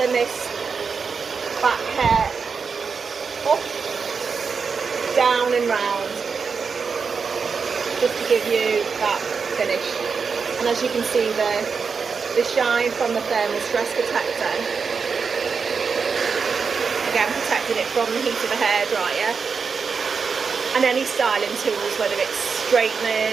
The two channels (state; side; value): quieter; left; 5.5 dB